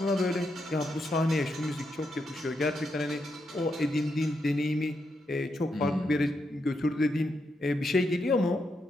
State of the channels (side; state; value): both; normal; correlation 0.82